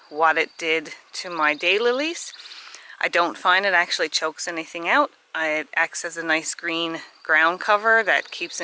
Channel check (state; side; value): identical; both; correlation 1.00